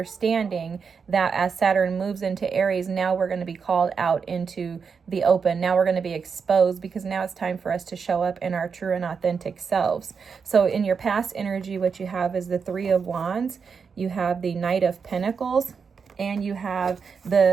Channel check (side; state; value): left; quieter; 5.8 dB